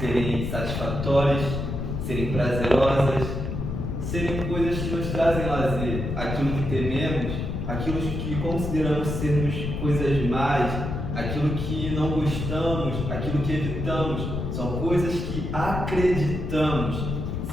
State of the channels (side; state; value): left; noise; rumble, 3 dB below the sound